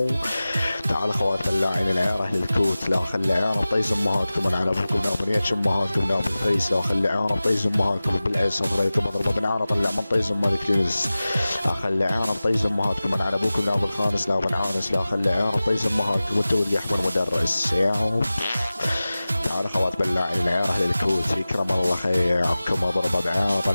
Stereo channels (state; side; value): inverted; both; correlation -0.97